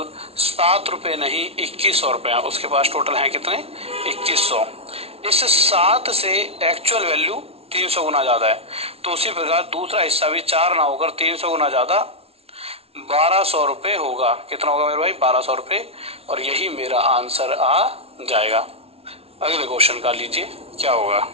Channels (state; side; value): late; left; 0.29 ms